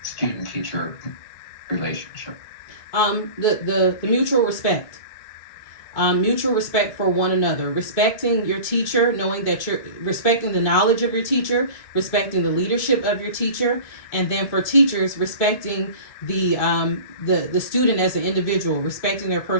student-teacher relationship? The mutual respect. Mutual respect for one another, respecting your teacher, knowing that you're respecting the knowledge of your teacher, respecting the leadership of your teacher, and then for teachers, respecting the student as an individual, respecting their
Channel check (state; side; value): late; right; 2.6 ms